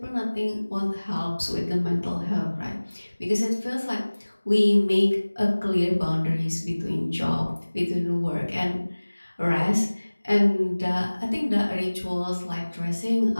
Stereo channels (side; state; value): both; inverted; correlation -1.00